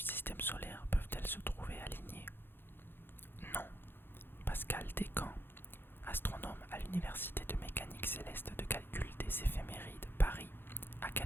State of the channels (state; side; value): late; right; 0.10 ms